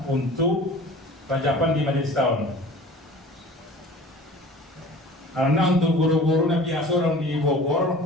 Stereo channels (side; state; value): both; normal; correlation 0.43